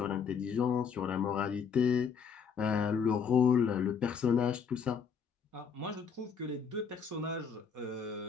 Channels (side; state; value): right; quieter; 6.4 dB